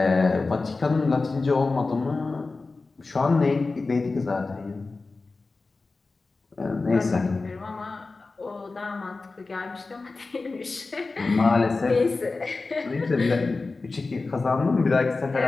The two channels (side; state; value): right; quieter; 3.7 dB